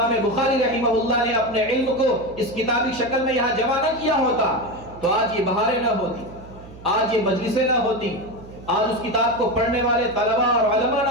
بخاری رحمہ اللہ نے اپنے علم کو اس کتابی شکل میں یہاں جمع نہ کیا ہوتا تو آج یہ بہاریں نہ ہوتی، آج یہ مجلسیں نہ ہوتی، آج اس کتاب کو پڑھنے والے طلباء اور علماء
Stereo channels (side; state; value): right; noise; hum, 18 dB below the sound